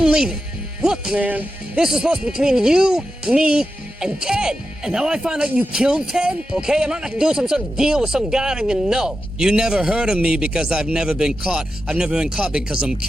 leaving. Look, man, this is supposed to be between you, me, and Ted. And now I find out you killed Ted, okay? I'm not gonna do some sort of deal with some guy I don't even know. You never heard of me because I've never been caught. I've never been caught because I'm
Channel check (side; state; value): both; normal; correlation 0.90